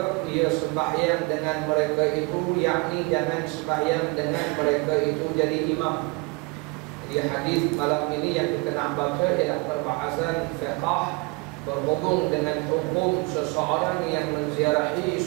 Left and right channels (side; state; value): left; quieter; 27.5 dB